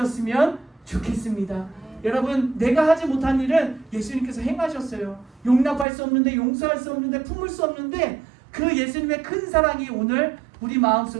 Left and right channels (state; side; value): drops out; left; at 5.9 s